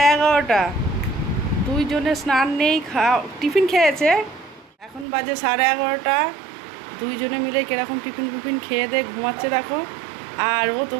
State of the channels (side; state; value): left; drops out; at 5.1 s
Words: দুইজনে স্নান নেই, টিফিন খেয়েছে, এখন বাজে 11:30, দুইজনে মিলে কিরকম টিফিন খেয়ে দিয়ে ঘুমাচ্ছে দেখো। আর ও